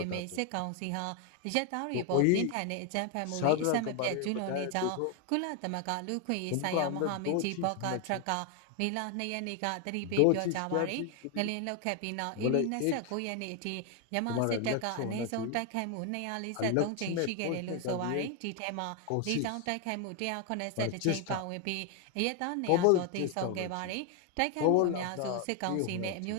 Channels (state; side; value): different; both; correlation 0.01